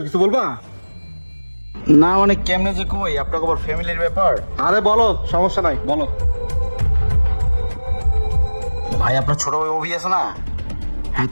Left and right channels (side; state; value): both; inverted; correlation -1.00